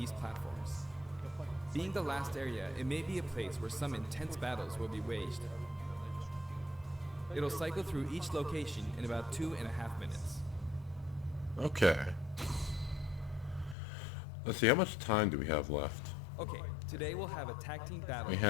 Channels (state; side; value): drops out; right; at 13.8 s